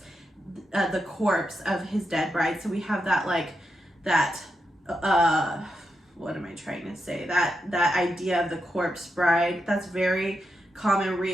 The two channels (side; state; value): both; normal; correlation 0.86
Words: the corpse of his dead bride. So we have that, like, that what am I trying to say? That idea of the corpse bride. That's very common